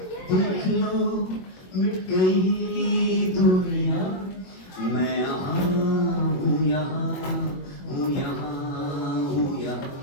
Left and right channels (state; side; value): late; right; 21 ms